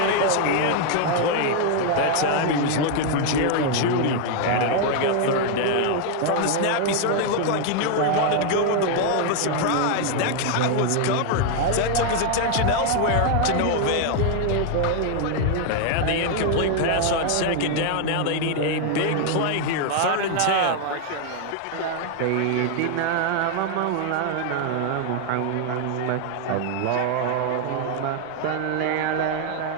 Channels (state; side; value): different; both; correlation 0.00